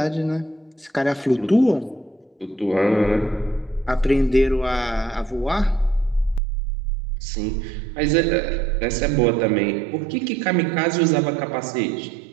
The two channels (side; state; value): left; drops out; at 6.4 s